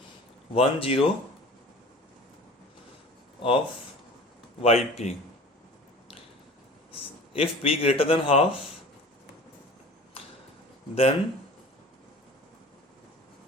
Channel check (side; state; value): both; normal; correlation 0.41